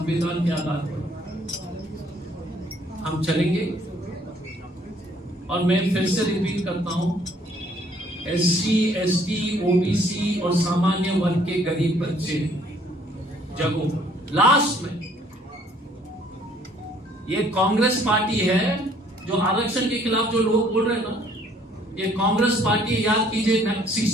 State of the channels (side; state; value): both; normal; correlation 0.61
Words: के आधार पर हम चलेंगे। और मैं फिर से रिपीट करता हूं, SC, ST, OBC और सामान्य वर्ग के गरीब बच्चे जगो। लास्ट में ये कांग्रेस पार्टी है जो आरक्षण के खिलाफ जो लोग बोल रहे हैं ना, ये कांग्रेस पार्टी, याद कीजिए